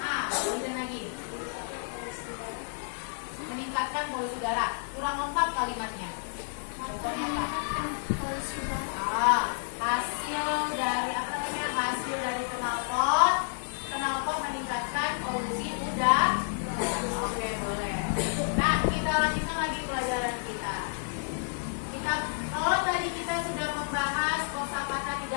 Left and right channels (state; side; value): silent; right; digital silence